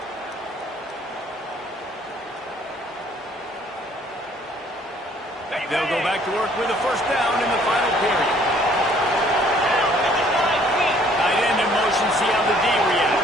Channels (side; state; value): both; normal; correlation 0.60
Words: They'll go back to work with a first down in the final period. Tight end in motion, see how the D